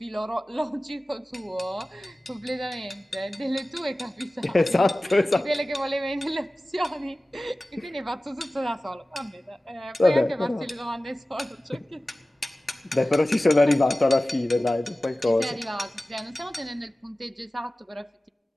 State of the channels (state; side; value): normal; both; correlation 0.97